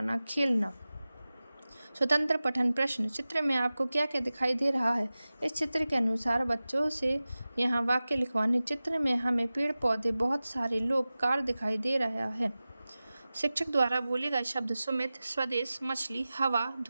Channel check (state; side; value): inverted; both; correlation -0.96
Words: खेलना। स्वतंत्र पठन प्रश्न। चित्र में आपको क्या क्या दिखाई दे रहा है? इस चित्र के अनुसार बच्चों से यहाँ वाक्य लिखवाने। चित्र में हमें पेड़ पौधे, बहुत सारे लोग, कार दिखाई दे रहा है। शिक्षक द्वारा बोले गए शब्द। सुमित, स्वदेश, मछली, हवा,